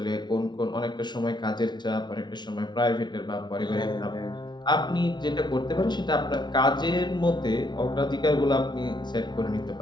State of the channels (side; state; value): right; late; 0.21 ms